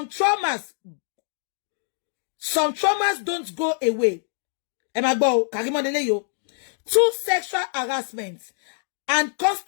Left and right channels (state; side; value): silent; right; digital silence